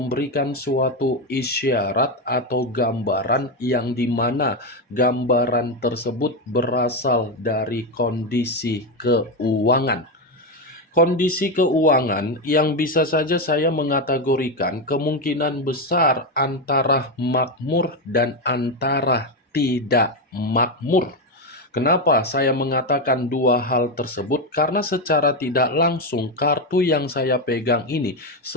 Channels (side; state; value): both; normal; correlation 0.10